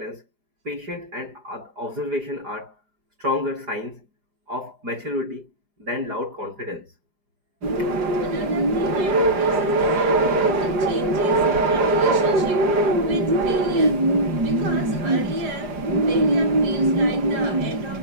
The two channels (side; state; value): left; late; 4.9 ms